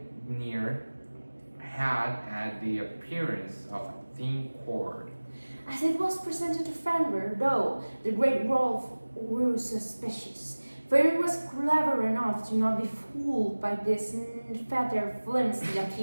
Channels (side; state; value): both; inverted; correlation -1.00